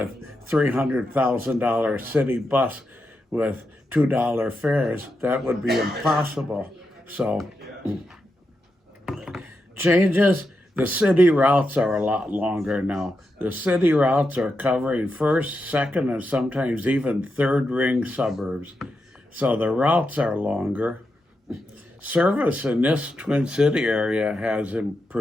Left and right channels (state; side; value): normal; both; correlation 0.86